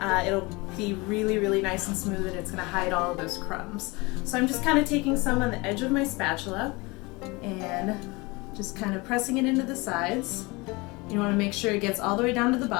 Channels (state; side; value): quieter; right; 25.1 dB